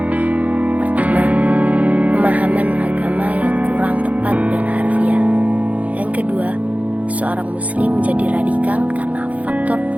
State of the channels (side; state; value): left; late; 0.069 ms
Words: Pertama, pemahaman agama yang kurang tepat dan harfiah. Yang kedua, seorang muslim menjadi radikal karena faktor